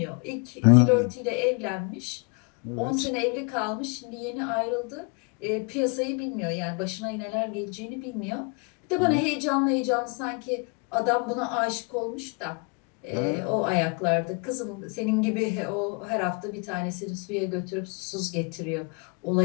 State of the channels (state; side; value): quieter; right; 33.9 dB